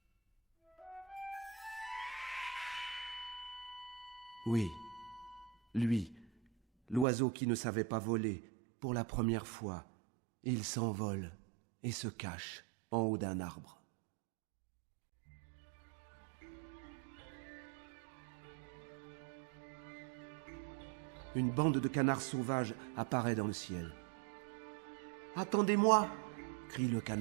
Oui, lui, l'oiseau qui ne savait pas voler, pour la première fois, il s'envole et se cache en haut d'un arbre. Une bande de canards sauvages apparaît dans le ciel. « Attendez-moi !» crie le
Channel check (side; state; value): left; drops out; at 7.1 s